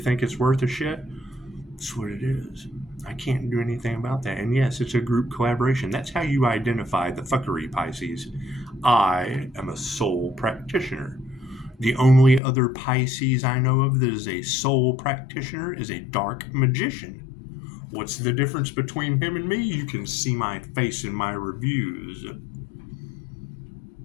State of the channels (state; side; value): drops out; right; at 12.4 s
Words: it's worth a shit? That's what it is. I can't do anything about that. And yes, it's a group collaboration. That's how you identify the fuckery, Pisces. I am a soul practitioner. The only other Pisces I know of that is a soul practitioner is a dark magician. What's the difference between him and me? You can see my face in my reviews.